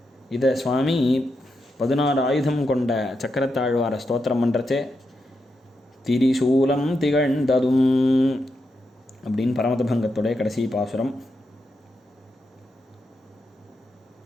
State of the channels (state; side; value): normal; both; correlation 0.85